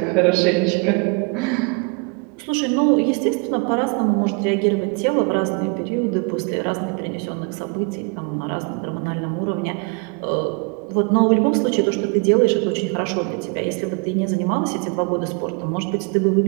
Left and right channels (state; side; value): quieter; left; 32.0 dB